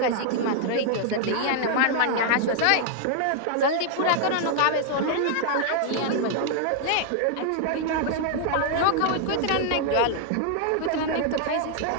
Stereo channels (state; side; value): different; both; correlation 0.00